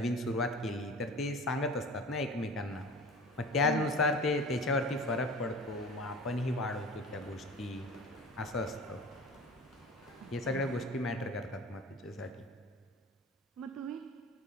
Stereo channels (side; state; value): both; normal; correlation 0.37